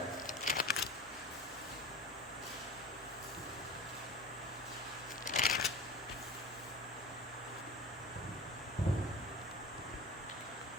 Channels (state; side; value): normal; both; correlation 0.35